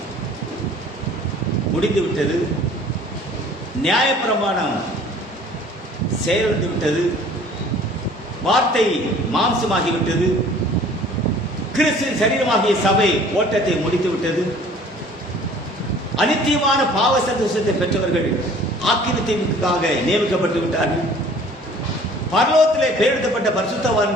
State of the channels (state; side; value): normal; both; correlation 0.51